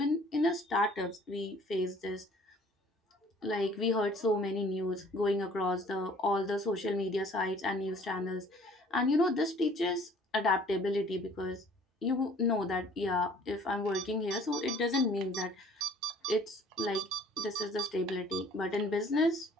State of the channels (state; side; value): normal; both; correlation 0.54